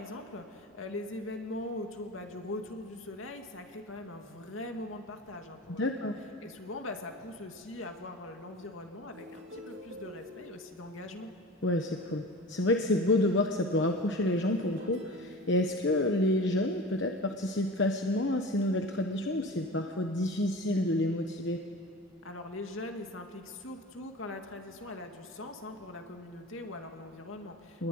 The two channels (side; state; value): both; normal; correlation 0.34